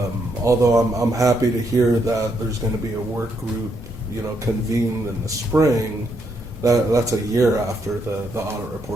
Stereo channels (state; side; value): normal; both; correlation 0.76